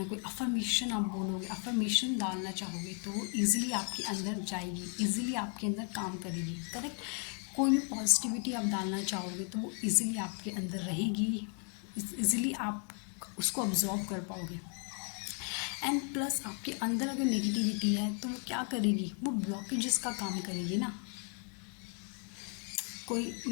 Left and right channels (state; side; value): quieter; right; 39.8 dB